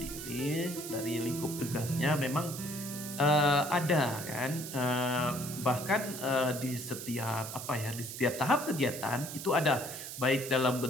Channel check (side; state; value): right; noise; hiss, 9 dB below the sound